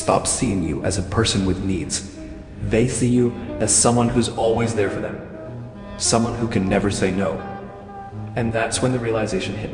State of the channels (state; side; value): identical; both; correlation 1.00